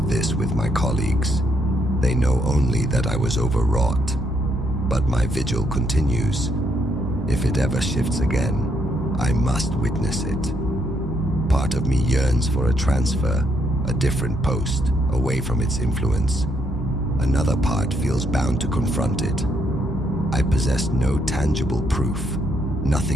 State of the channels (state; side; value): normal; both; correlation 0.74